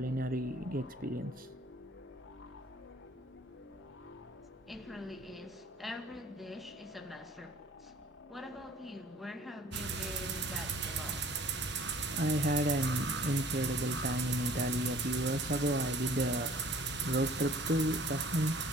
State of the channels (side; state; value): both; normal; correlation 0.52